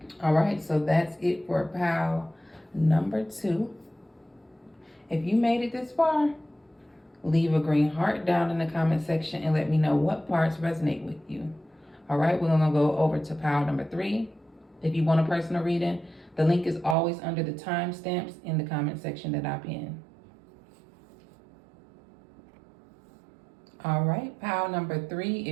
All right, so that's it for pile number 2. If you made it this far, leave a green heart down in the comment section and let me know what parts resonate with you. All right, we're gonna go over to pile number 3. If you want a personal reading, the link is always under the timestamps in the comment section that I'm in. All right, pile number 3.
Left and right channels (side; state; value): left; drops out; at 16.9 s